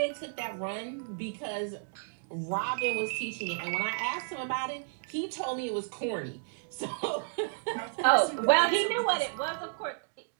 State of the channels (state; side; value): silent; left; digital silence